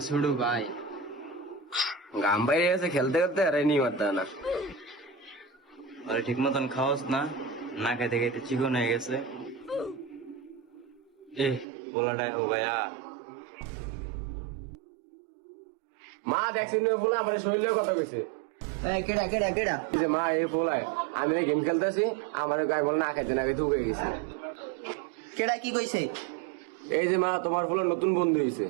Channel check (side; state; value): left; drops out; at 11.7 s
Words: ছোট ভাই। গাম বাইরে গেছে খেলতে খেলতে আর নি মারতে না। আরে ঠিক মতন খাওয়াস না, না খাইতে খাইতে চিকন হয়ে গেছে। এ পোলাটা ও ভাইয়া মা দেখছেন ফুলা আমার শরীরের কথা কইছে। কেডা কেডা কেডা? এই যে মা এই ফুলায় আমি গেম খেলতেছি আমার গায়ে বল না খাইতে না খাইতে ঢুকে গেছি। কেডা কি কইছে? এই যে মা তোমার ফুলের নতুন বন্ধু হয়েছে